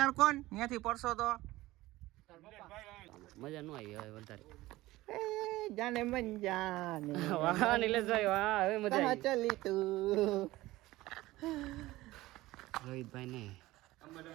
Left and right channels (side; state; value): left; quieter; 18.0 dB